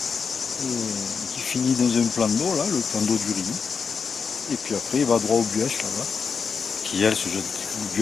et qui finit dans un plan d'eau là, le plan d'eau du Riou. Et puis après il va droit au Buèche là-bas, qui elle se jette, le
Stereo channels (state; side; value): quieter; right; 5.8 dB